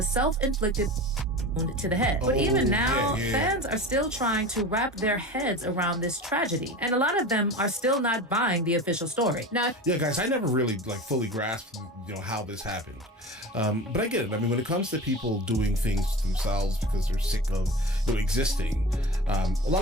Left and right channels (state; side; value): normal; both; correlation 0.33